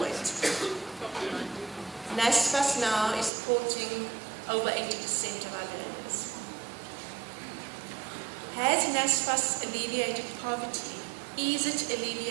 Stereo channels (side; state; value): left; drops out; at 3.3 s